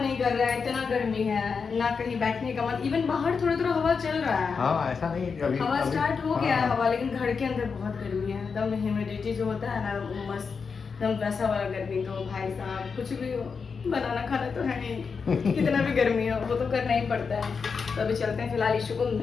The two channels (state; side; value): quieter; right; 5.4 dB